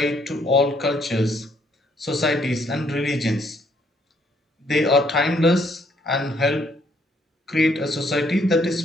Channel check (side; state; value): both; normal; correlation 0.68